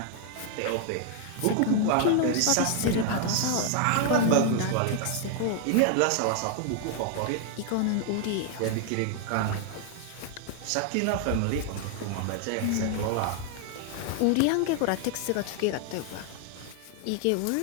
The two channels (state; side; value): different; both; correlation 0.00